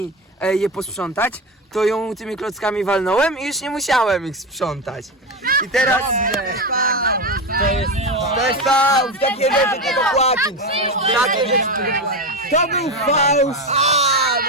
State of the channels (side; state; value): both; normal; correlation 0.17